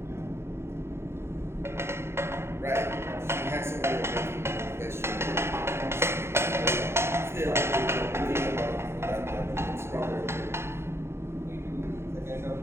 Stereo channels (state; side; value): late; left; 0.12 ms